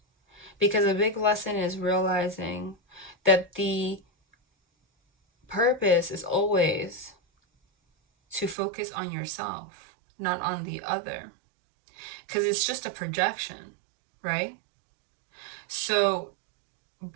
Because a big lesson is realizing that the purpose is always to focus on yourself, not on the other. Because it's just a projection, right? So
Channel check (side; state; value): left; drops out; at 8.6 s